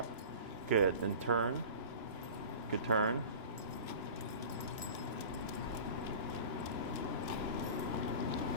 Good. Then turn. Good turn.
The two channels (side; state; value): left; late; 3.0 ms